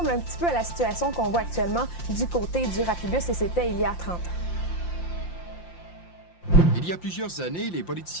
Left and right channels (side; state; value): right; late; 5.7 ms